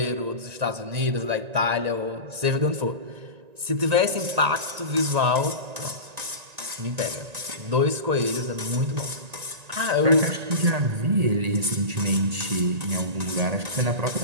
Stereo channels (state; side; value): late; left; 1.9 ms